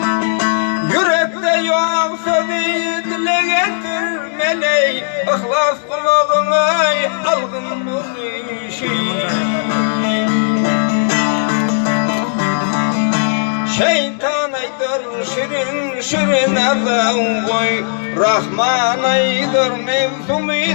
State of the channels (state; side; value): silent; right; digital silence